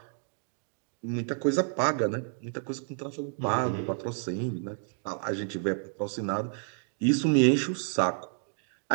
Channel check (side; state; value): left; silent; 58 dB below the other